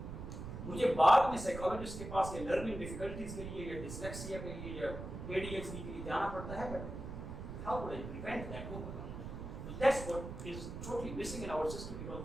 مجھے بعد میں سائیکالوجسٹ کے پاس یا لرننگ ڈیفیکلٹیز کے لیے یا ڈسلیکسیا کے لیے یا ADHD کے لیے جانا پڑتا ہے, but how would I prevent that, وہ So that's what is totally missing in our system because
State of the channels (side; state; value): right; noise; rumble, 8 dB below the sound